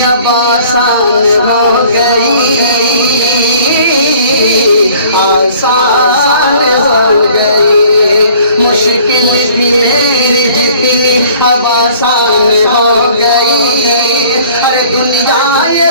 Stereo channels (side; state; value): both; inverted; correlation -0.53